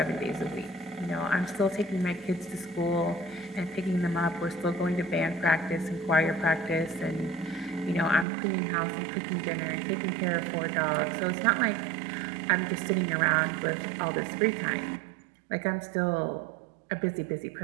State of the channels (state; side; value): drops out; left; at 8.2 s